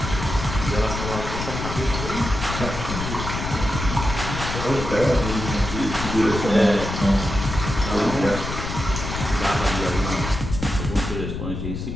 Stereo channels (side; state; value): left; noise; rumble, 5 dB below the sound